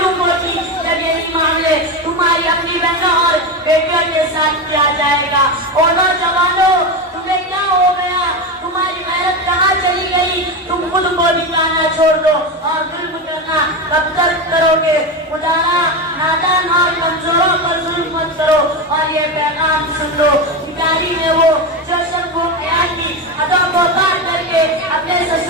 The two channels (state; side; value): normal; both; correlation 0.17